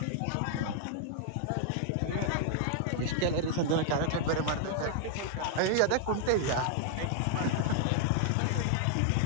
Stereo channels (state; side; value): different; both; correlation -0.01